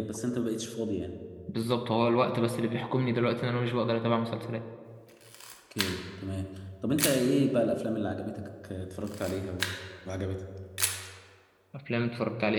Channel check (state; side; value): identical; both; correlation 1.00